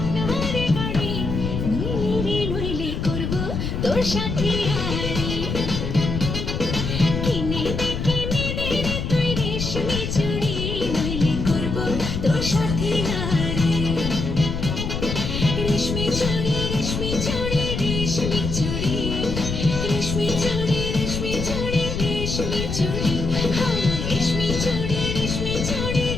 বাড়ি, নইলে করব তোর সাথে আড়ি। কিনে দে রে তুই রেশমি চুড়ি, নইলে করব তোর সাথে আড়ি। রেশমি চুড়ি রেশমি চুড়ি রেশমি চুড়ি, রেশমি চুড়ি রেশমি চুড়ি রেশমি চুড়ি, হ্যাঁ রেশমি চুড়ি রেশমি চুড়ি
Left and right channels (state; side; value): noise; left; rumble, 3 dB below the sound